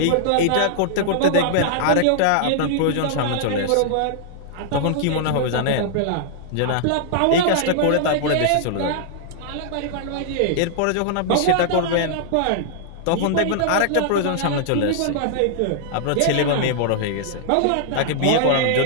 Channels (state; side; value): different; both; correlation -0.01